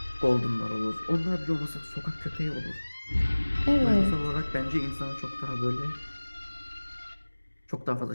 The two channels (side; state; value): both; inverted; correlation -1.00